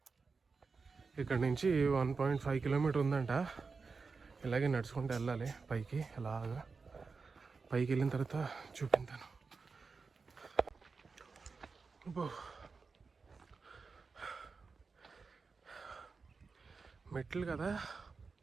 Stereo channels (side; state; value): left; quieter; 4.7 dB